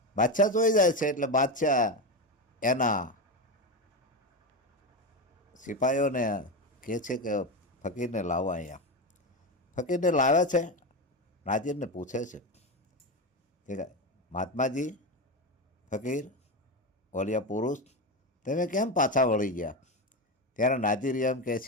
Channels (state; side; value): normal; both; correlation 0.16